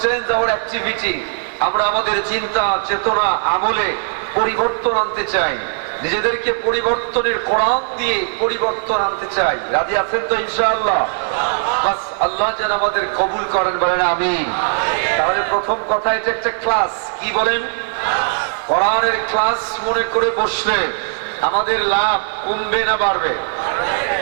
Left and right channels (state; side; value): silent; left; 65 dB below the other